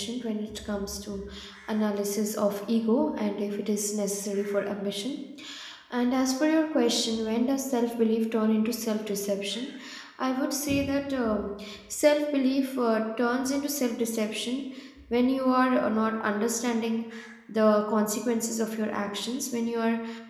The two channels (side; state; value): both; identical; correlation 1.00